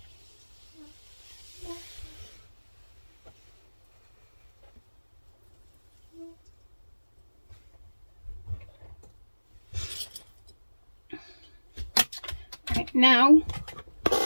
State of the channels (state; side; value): inverted; both; correlation -1.00